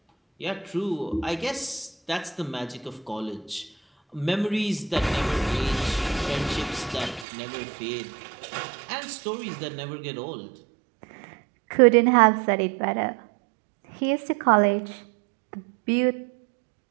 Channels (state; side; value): drops out; left; at 7.2 s